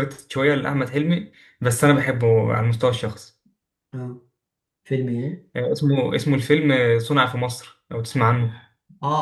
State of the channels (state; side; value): identical; both; correlation 1.00